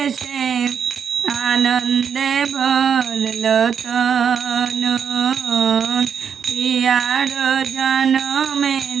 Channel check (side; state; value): left; quieter; 7.3 dB